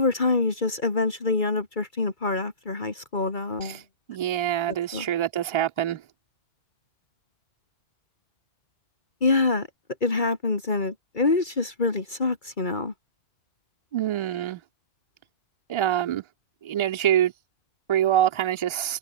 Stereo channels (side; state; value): right; late; 2.3 ms